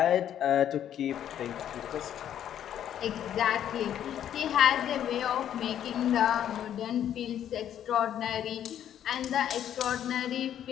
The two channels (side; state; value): right; quieter; 10.3 dB